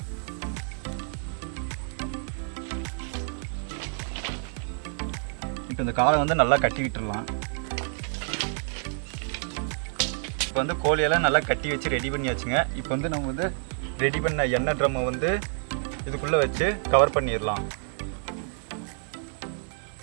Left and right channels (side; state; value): left; silent; 59 dB below the other